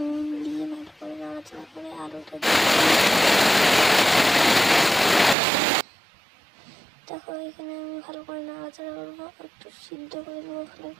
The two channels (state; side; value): drops out; left; at 5.4 s